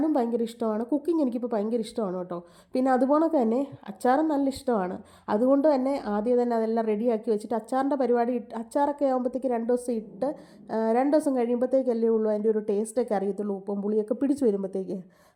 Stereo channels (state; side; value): identical; both; correlation 1.00